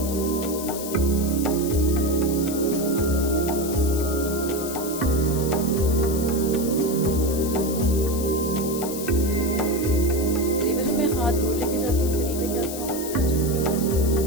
हाथ दूर लेके जाती हूँ, करीब लेके आती हूँ, आप इसे टचिंग फील कर सकती हैं।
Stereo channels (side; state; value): left; noise; hiss, 9 dB below the sound